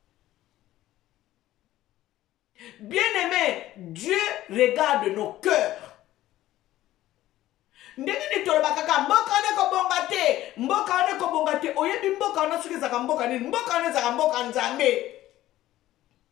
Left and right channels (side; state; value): right; quieter; 14.7 dB